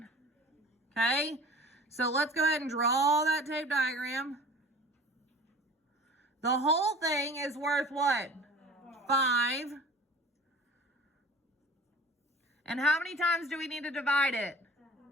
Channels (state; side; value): normal; both; correlation 0.43